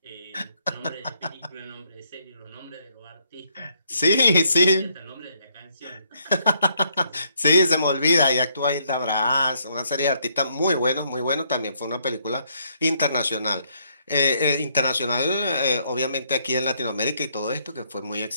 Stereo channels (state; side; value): inverted; both; correlation -0.71